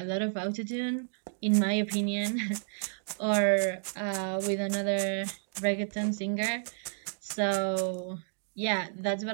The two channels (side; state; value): left; silent; digital silence